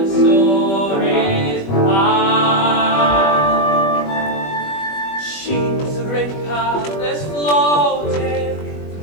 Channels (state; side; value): late; right; 21 ms